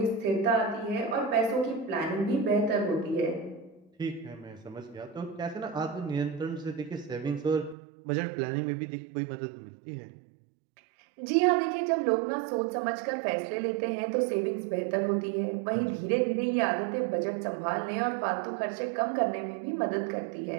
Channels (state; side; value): drops out; left; at 7.8 s